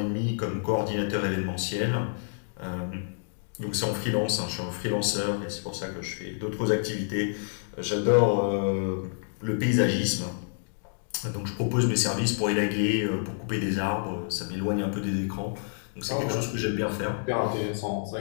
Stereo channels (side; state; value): right; silent; digital silence